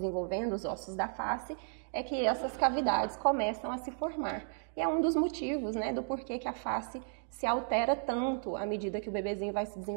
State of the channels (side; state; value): left; silent; digital silence